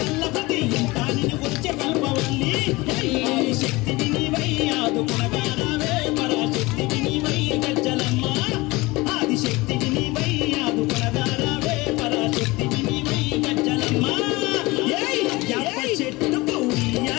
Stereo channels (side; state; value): right; quieter; 22.1 dB